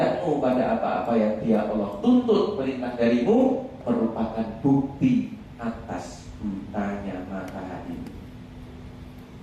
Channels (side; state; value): both; identical; correlation 1.00